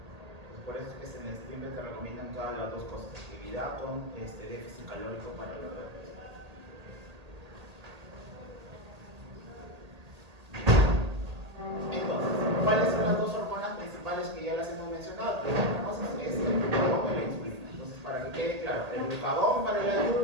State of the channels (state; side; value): late; left; 1.8 ms